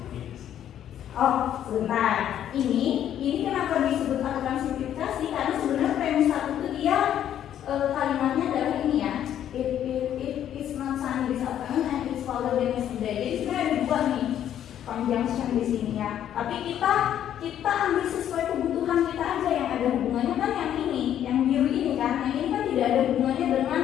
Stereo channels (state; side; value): quieter; right; 10.5 dB